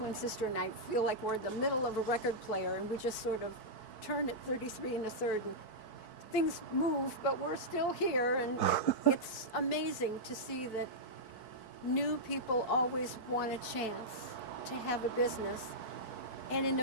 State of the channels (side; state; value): right; late; 4.6 ms